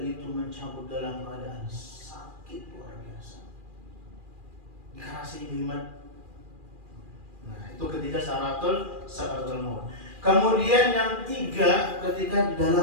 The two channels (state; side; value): late; left; 2.4 ms